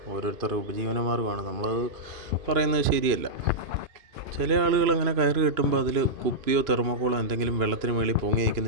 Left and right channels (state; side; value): late; left; 2.5 ms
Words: ഓരോരുത്തരുടെ ഉപജീവനമാർഗ്ഗമാണ്. നമ്മളത് പറയുന്നത് ശരിയല്ല. ചില ആളുകൾ അങ്ങനെ കയറ് കെട്ടുമ്പോൾ അതിൽ കുപ്പിയോ തെർമോക്കോളോ എന്തെങ്കിലും വെള്ളത്തിന് മേളിൽ പൊങ്ങി